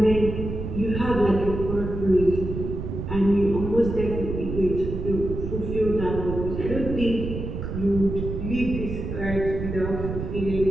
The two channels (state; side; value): noise; right; rumble, 5 dB below the sound